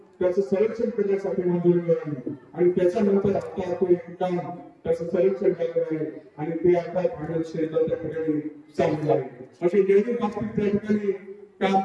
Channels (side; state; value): both; identical; correlation 1.00